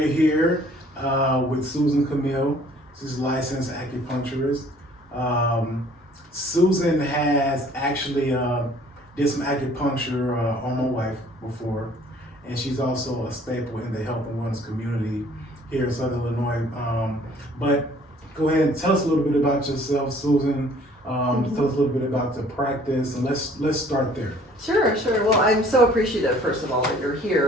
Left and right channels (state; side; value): normal; both; correlation 0.55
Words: here with Susan Kamil. She's a licensed acupuncturist. Susan has actually did some acupuncture on my wife before. And she's also a staple in the health and wellness community here in Southern Illinois. But go ahead and tell us a little bit about yourself, Susan. Tell us a little bit about the practice, and let's start there. Sure. Well, I'm so appreciative, first of all, that you're